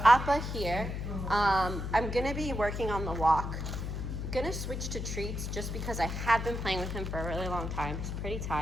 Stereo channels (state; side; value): noise; left; hum, 4 dB below the sound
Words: Appa here. I'm gonna be working on the walk. I'm gonna switch to treats just because I have been playing with him for a really long time. He's pretty